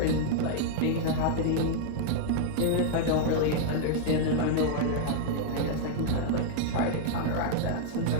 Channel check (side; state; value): both; different; correlation -0.01